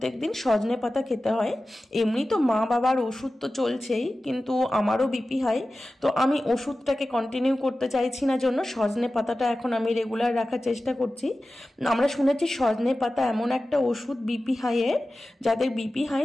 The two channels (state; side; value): normal; both; correlation 0.95